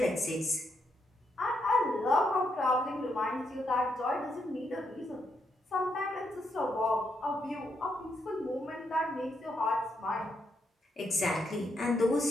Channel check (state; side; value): normal; both; correlation 0.79